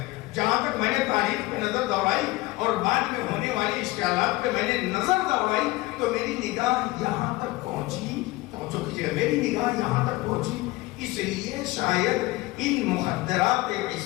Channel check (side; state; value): right; quieter; 20.4 dB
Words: جہاں تک میں نے تاریخ پہ نظر دوڑائی اور بعد میں ہونے والے اشکالات پہ میں نے نظر دوڑائی تو میری نگاہ یہاں تک پہنچی. توجہ کیجیے, میری نگاہ یہاں تک پہنچی. اس لیے شاید ان مخدرات